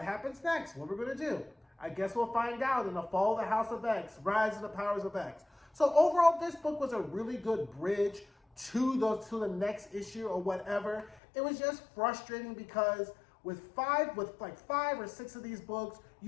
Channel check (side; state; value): right; drops out; at 11.2 s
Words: happens next? What are we going to do? I guess we'll find out in the Fall of the House of X, Rise of the Powers of X. So overall, this book was a really good bridge to the next issue or whatever. It was just frustrating because with five or six of these books,